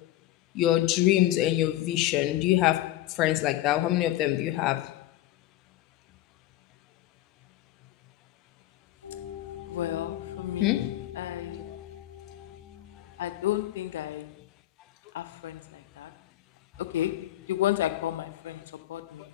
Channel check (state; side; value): quieter; right; 14.6 dB